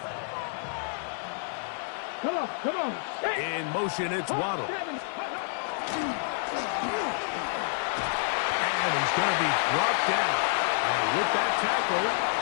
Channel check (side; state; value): right; silent; digital silence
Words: Come on. In motion, it's Waddle. And he's going to be brought down. And with that tackle,